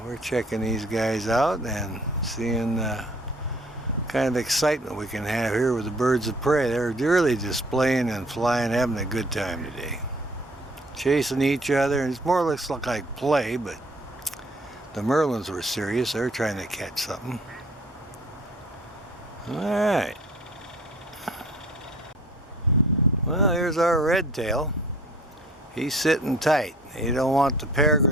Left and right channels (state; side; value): normal; both; correlation 0.54